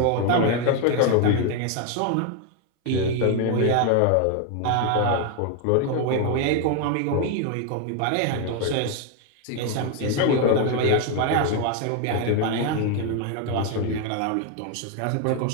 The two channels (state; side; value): different; both; correlation 0.01